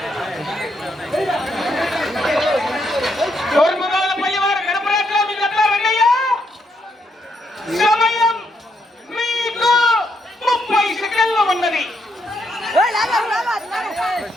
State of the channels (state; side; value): normal; both; correlation 0.77